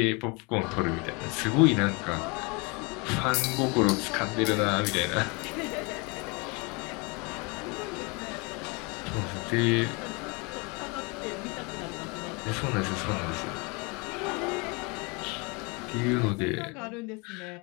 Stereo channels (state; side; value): quieter; right; 29.3 dB